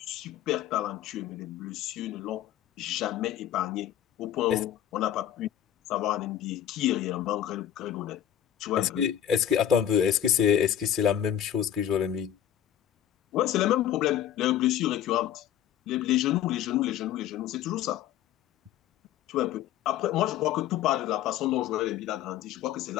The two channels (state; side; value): quieter; right; 10.8 dB